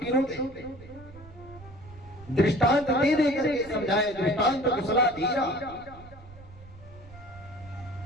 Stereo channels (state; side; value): noise; right; rumble, 19 dB below the sound